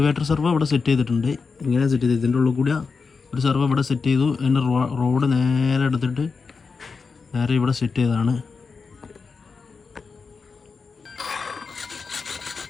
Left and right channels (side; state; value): right; quieter; 4.9 dB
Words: സെർവോ ഇവിടെ സെറ്റ് ചെയ്തിട്ടുണ്ട്. ഇങ്ങനെ സെറ്റ് ചെയ്ത് ഇതിൻ്റെ ഉള്ളിൽ കൂടി ഒരു സെർവോ ഇവിടെ സെറ്റ് ചെയ്തു. അതിൻ്റെ റോഡ് നേരെ എടുത്തിട്ട് നേരെ ഇവിടെ സെറ്റ് ചെയ്തതാണ്.